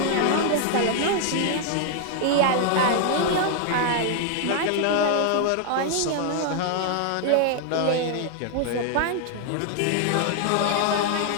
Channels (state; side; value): different; both; correlation 0.00